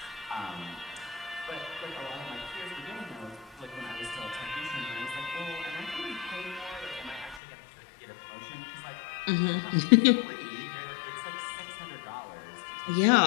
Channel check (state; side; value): drops out; right; at 7.4 s